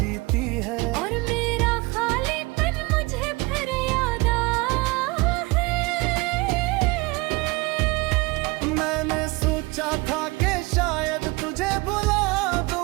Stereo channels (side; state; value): left; quieter; 24.3 dB